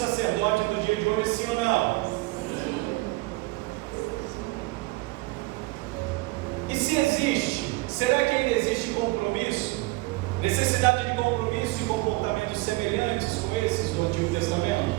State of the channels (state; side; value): quieter; left; 22.4 dB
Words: no dia de hoje, sim ou não? E se existe, será que ainda existe compromisso? Necessidade de compromisso e comportamentos semelhantes com esses do Antigo